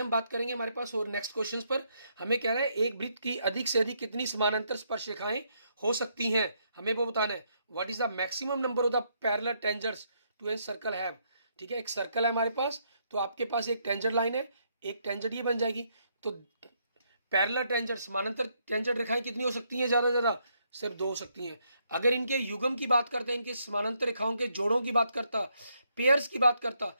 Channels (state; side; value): inverted; both; correlation -0.75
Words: बात करेंगे हमारे पास और नेक्स्ट क्वेश्चंस पर। हमें कह रहा है एक वृत्त की अधिक से अधिक कितनी समानांतर स्पर्श रेखाएं हो सकती हैं, हमें वो बताना है। What is the maximum number of the parallel tangents to a circle have, ठीक है। एक सर्कल है हमारे पास, तो आपके पास एक टेंजेंट लाइन है, एक टेंजेंट ये बन जाएगी। तो पैरेलल टेंजेंट समानांतर टेंजेंट रेखाएं कितनी हो सकती हैं, ज्यादा ज्यादा सिर्फ 2 हो सकती हैं। अगर इनके युग्म की बात करते हैं, इनके समानांतर रेखाओं के जोड़ों की बात करता, पेयर्स की बात करता,